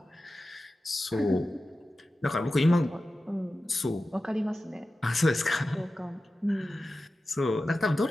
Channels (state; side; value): normal; both; correlation 0.94